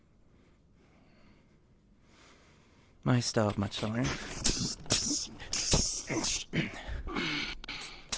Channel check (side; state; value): both; identical; correlation 1.00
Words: I still have much to learn.